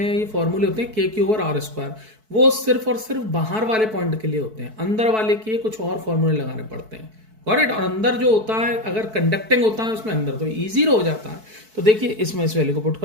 ये फॉर्मूले होते हैं KQ ओवर R स्क्वायर, वो सिर्फ और सिर्फ बाहर वाले पॉइंट के लिए होते हैं, अंदर वाले के कुछ और फॉर्मूले लगाने पड़ते हैं, करेक्ट। और अंदर जो होता है, अगर कंडक्टिंग होता है उसमें अंदर, तो इजी हो जाता है। तो देखिए इसमें इस वैल्यू को पुट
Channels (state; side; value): late; left; 4.6 ms